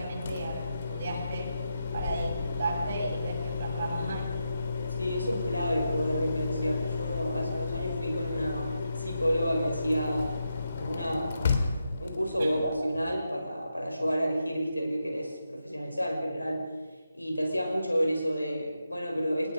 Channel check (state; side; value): inverted; both; correlation -0.86